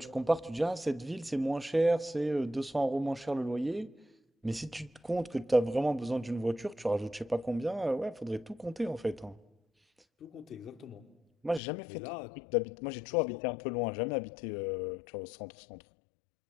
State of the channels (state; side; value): drops out; right; at 11.6 s